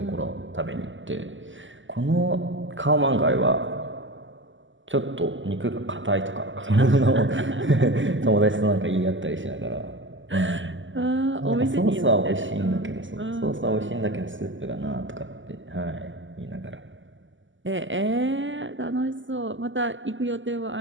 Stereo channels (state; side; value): late; left; 0.55 ms